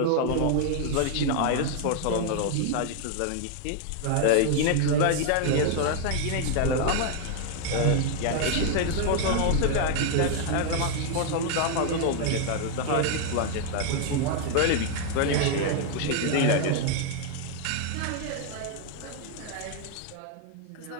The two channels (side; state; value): both; different; correlation 0.00